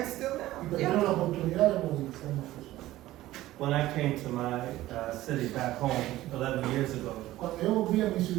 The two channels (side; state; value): left; quieter; 15.8 dB